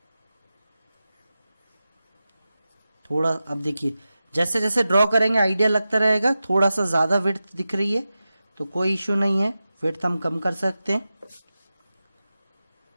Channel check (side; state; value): both; inverted; correlation -0.94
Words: थोड़ा, अब देखिए जैसे जैसे ड्रॉ करेंगे आइडिया लगता रहेगा। थोड़ा सा ज़्यादा विड्थ दिख रही है तो कोई इशू नहीं है, विड्थ हम कम कर सकते हैं।